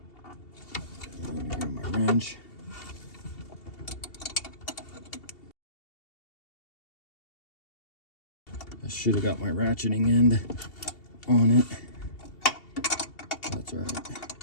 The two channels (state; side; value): late; right; 2.7 ms